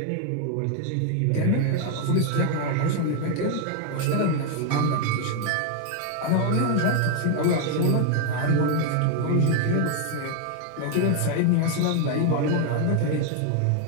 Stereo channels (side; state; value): both; different; correlation 0.01